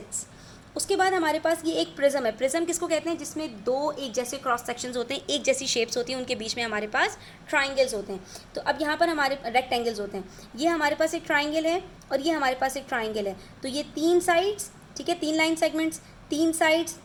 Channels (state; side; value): identical; both; correlation 1.00